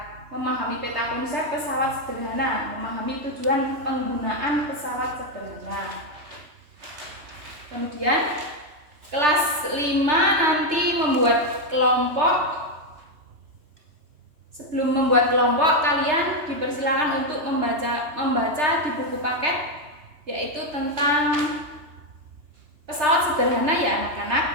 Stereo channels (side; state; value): left; late; 3.3 ms